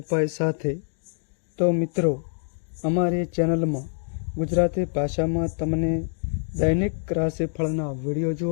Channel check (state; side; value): silent; right; digital silence